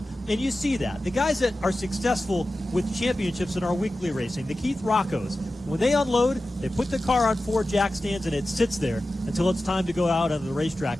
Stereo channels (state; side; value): normal; both; correlation 0.94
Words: And you see that. The guys that are successful with championships in our weekly racing, the Keith Roccos, when they unload, they put the car on 4 jack stands and it sits there until it's time to go out on the